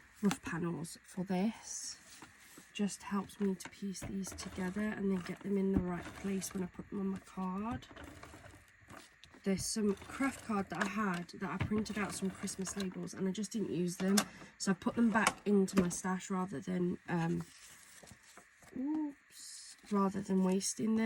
rough panels for this. Just helps me to piece these together and then get them in the right place when I put them on my card. There's some craft card that I had that I printed out some Christmas labels and I just didn't use them. So I put them back into my stash rather than wasting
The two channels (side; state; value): both; identical; correlation 1.00